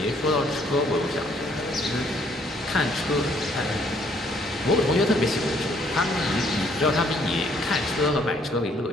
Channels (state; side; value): normal; both; correlation 0.65